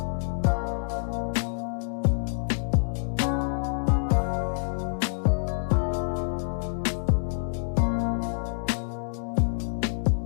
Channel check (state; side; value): silent; right; digital silence